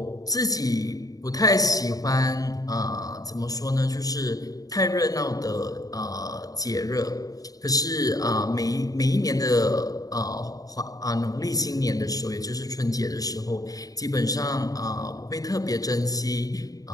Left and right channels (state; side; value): late; right; 0.18 ms